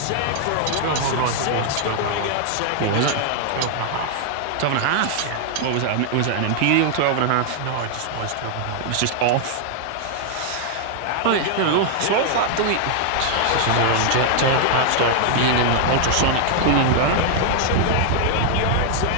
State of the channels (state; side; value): different; both; correlation 0.00